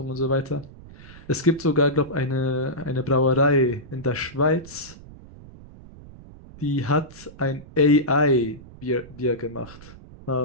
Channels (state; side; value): noise; right; rumble, 19 dB below the sound